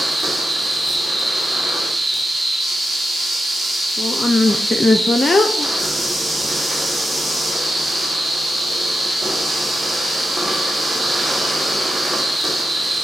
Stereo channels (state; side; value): normal; both; correlation 0.88